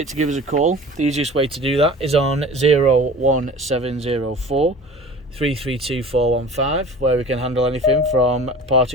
to give us a call. The easiest way to do that is on 01704 332 415, where we can handle anything from part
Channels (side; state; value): both; normal; correlation 0.40